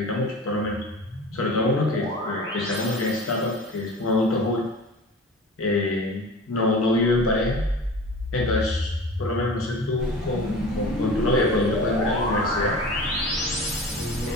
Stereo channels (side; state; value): both; normal; correlation 0.36